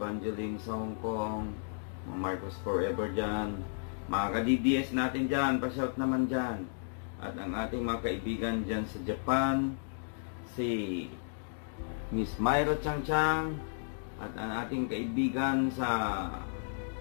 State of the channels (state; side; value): silent; right; digital silence